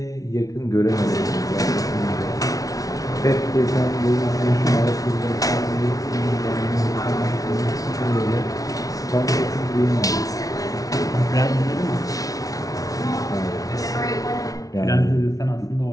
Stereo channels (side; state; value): right; late; 0.18 ms